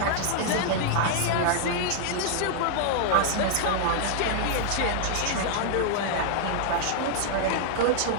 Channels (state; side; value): different; both; correlation -0.01